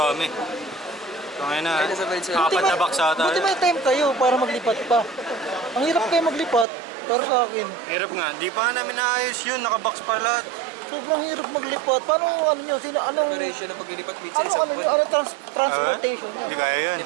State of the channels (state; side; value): drops out; left; at 6.7 s